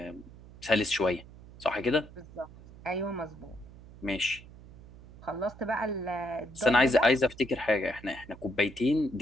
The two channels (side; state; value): right; noise; hum, 19 dB below the sound